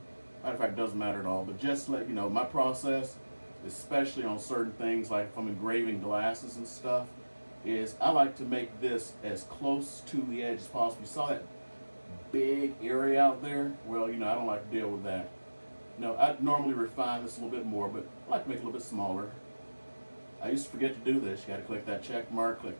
Matter of fact, it doesn't matter at all. But just to let you know, my process, especially on certain things like if I'm engraving glasses and stuff, is I like to make this as close to the edge as possible. You saw that big area out there? Well, I don't like to deal with that. I normally refine this a little bit more, but I like to make it a little bit smaller. I used to forget to do this. You got to click that check mark, click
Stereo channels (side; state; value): both; inverted; correlation -1.00